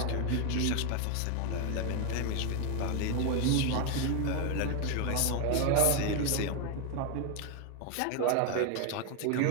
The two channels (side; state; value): both; different; correlation 0.01